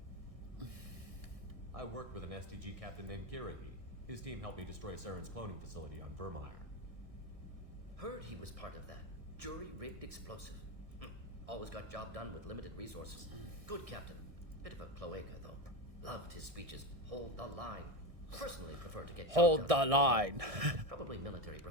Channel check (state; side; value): late; left; 1.6 ms